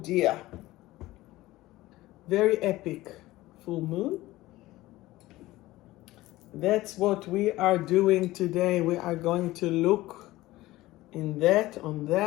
Very epic full moon. That's what we are doing today. We are going to look on that.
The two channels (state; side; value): quieter; right; 17.7 dB